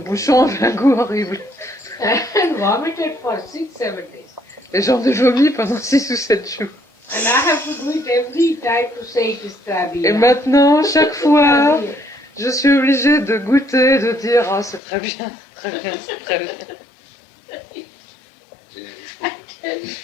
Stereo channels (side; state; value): right; drops out; at 14.8 s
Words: avait un goût horrible. And vomited for 6-7 days. Et j'en ai vomi pendant 6 ou 7 jours. And I have to do it every time to say it is Trabi. Et maintenant, chaque fois, je suis obligée de goûter, de dire « Ah, c'est très bien, très bien, c'est très bien. et-